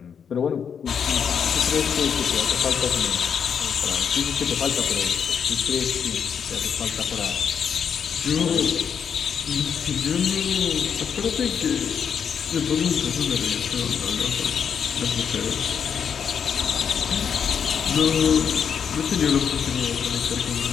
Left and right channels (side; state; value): right; quieter; 7.3 dB